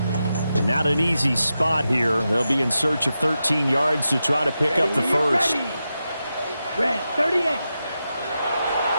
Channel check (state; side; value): inverted; both; correlation -0.89